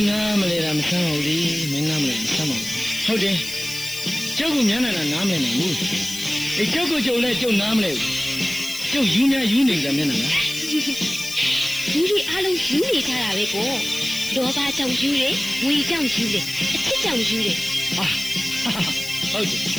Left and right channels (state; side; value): noise; left; hiss, 10 dB below the sound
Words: းနာမလဲတာမဆမ်းပါဘူးလေ။မင်းနာမလဲမဆမ်းပါဘူး။ဟုတ်တယ်။ကျုပ်ကညနေနာနားမလဲနိုင်ဘူး။ကျုပ်ကကျုပ်လည်းကျုပ်နားမလဲဘူး။ကျုပ်ယူများယူနေကြမျက်နှာလား လူတွေအားလုံးယူနေကြတာပဲပေါ့လောဘကြောင့်ယူတယ်ဝေကြောင့်ယူတယ်အချစ်ကြောင့်ယူတယ် ။ဟုတ်တယ်